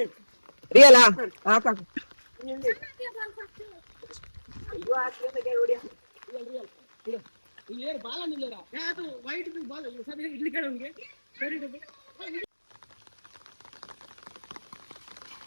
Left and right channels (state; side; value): inverted; both; correlation -1.00